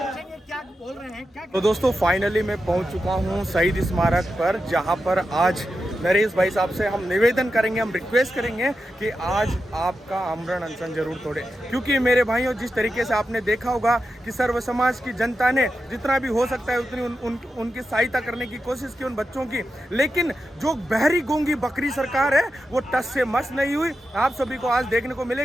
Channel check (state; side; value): normal; both; correlation 0.89